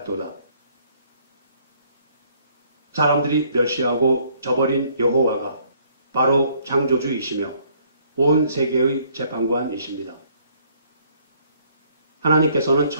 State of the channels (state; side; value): inverted; both; correlation -0.64